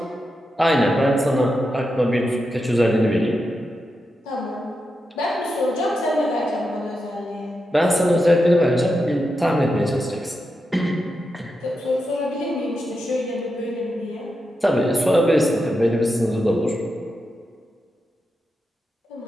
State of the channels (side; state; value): both; normal; correlation 0.87